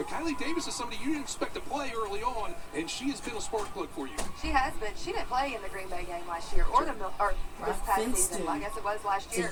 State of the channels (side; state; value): both; identical; correlation 1.00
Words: Kylie Davis is somebody you didn't expect to play early on, and she has been a spark plug for you. She has been. She didn't play in the Green Bay game last year or this past Finstone. season. I guess it was last To year.